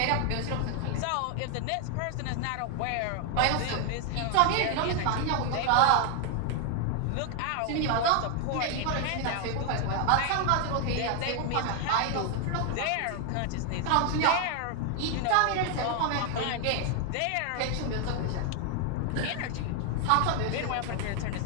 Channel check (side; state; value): both; different; correlation 0.01